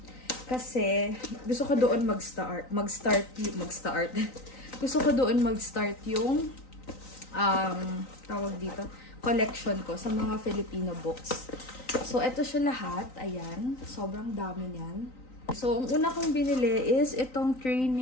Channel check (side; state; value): right; late; 3.9 ms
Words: Kasi, gusto ko doon mag-start. Gusto ko doon mag-start yung, tawag dito, collection ko sa mga Filipino books. So, ito siya lahat. Ayan. Sobrang dami niyan. So, ang una kong binili is itong